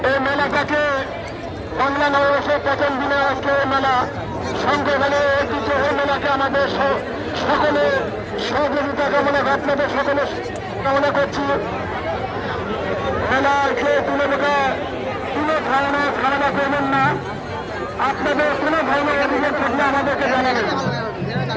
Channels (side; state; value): both; identical; correlation 1.00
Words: এই মেলাটাকে বাংলা নববর্ষের প্রথম দিনে আজকে মেলা সংগ্রহণে ঐতিহ্য মেলাকে আমাদের সকলে সহযোগিতা কামনা আপনাদের সকলে কামনা করছি। মেলাকে কোনো ধরনের ধারণা করবেন না। আপনাদের কোনো ধরনের অভিযোগ থাকলে আমাদেরকে জানাবেন।